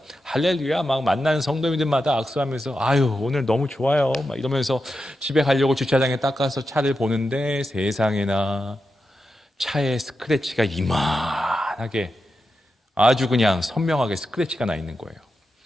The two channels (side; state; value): both; normal; correlation 0.89